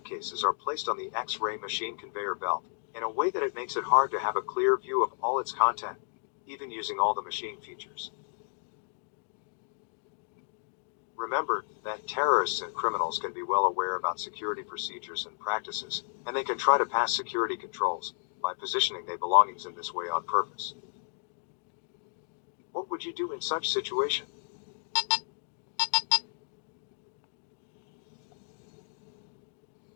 are placed on the X-ray machine conveyor belt, in a way that it makes it hard to have a clear view of all its content, even using all the machine features. Remember that terrorists and criminals can be well aware about security procedures and practices, and they can try to pass security controls by positioning their belongings in this way on purpose. What would you do in such situation?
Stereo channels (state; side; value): silent; right; digital silence